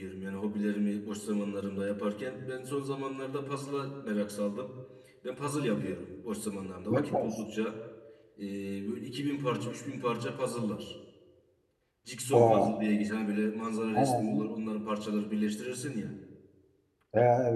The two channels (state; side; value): identical; both; correlation 1.00